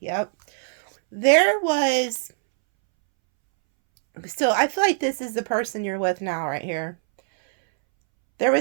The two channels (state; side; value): silent; left; 64 dB below the other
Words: There was... So I feel like this is the person you're with now right here. There